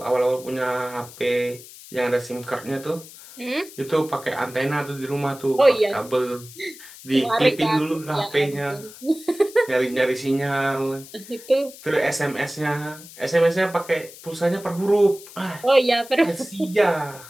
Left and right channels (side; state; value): left; noise; hiss, 18 dB below the sound